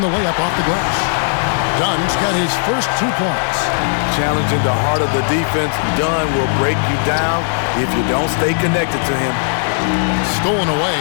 the layup off the glass. Dunn's got his first 2 points. Challenging the heart of the defense, Dunn will break you down if you don't stay connected to him. Stolen away.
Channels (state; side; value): silent; right; digital silence